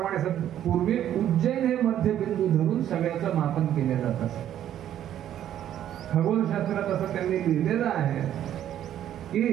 पूर्वी उज्जैन हे मध्यबिंदू धरून सगळ्याचं मापन केलं जात असे. खगोलशास्त्रात असं त्यांनी लिहिलेलं आहे की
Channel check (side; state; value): left; quieter; 11.1 dB